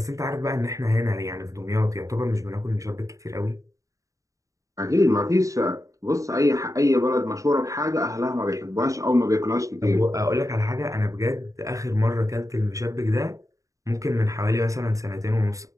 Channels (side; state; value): left; late; 0.16 ms